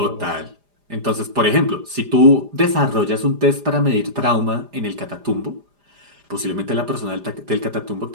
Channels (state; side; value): late; left; 4.9 ms